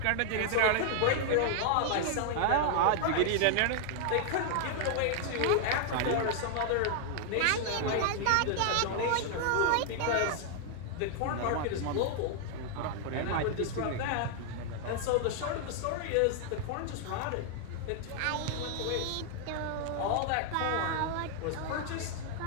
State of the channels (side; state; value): both; different; correlation 0.00